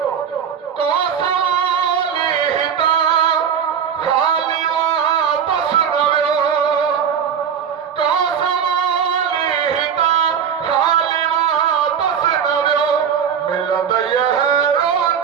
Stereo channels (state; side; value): quieter; left; 7.7 dB